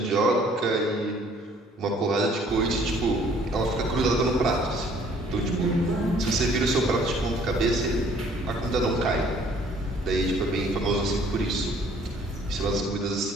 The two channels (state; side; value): normal; both; correlation 0.58